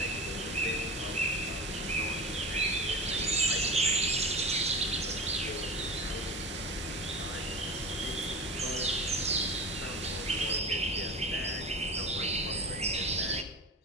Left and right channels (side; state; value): both; normal; correlation 0.30